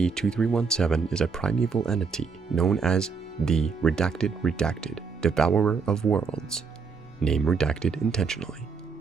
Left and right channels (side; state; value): left; quieter; 5.3 dB